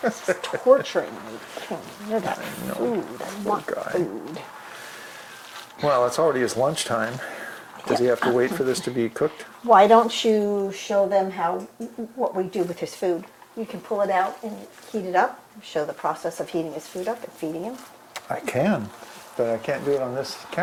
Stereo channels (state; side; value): identical; both; correlation 1.00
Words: It's torturing me. You're that know. food. I want guy. food. Well, it's already his lunchtime. Does he have to wait for this to be cooked? Why don't you show them what we do with his food? You can pull it out and heat it up. Show the process of heating his food up and feeding him. I can, but I can't do it on this